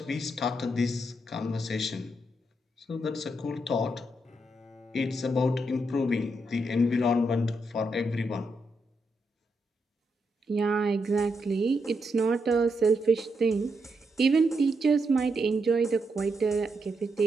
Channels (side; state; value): both; normal; correlation 0.81